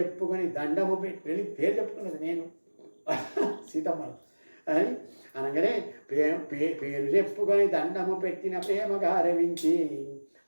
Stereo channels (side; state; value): both; inverted; correlation -1.00